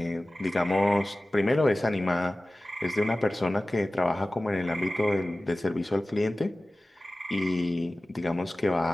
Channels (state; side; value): normal; both; correlation 0.97